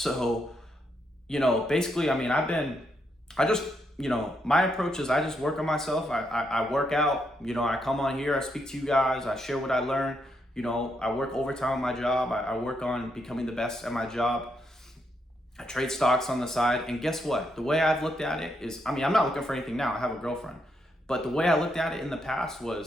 basically, I mean, my approach is I just work on myself. I work out, I come on here, I speak to you guys, I share what I learn. I work overtime on my job. I work on becoming the best at my job. I trade stocks on the side. And guess what? The way I've looked at it is, I'm not looking for anything now. I have a girlfriend. But the way I looked at it in the past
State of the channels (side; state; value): both; normal; correlation 0.79